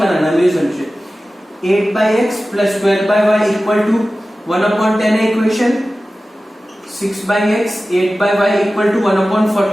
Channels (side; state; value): both; normal; correlation 0.96